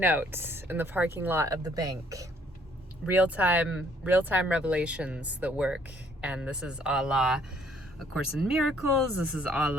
in the parking lot of the bank. Real-time revelations that work. And this is a la A Course in Miracles. This is a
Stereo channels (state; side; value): normal; both; correlation 0.63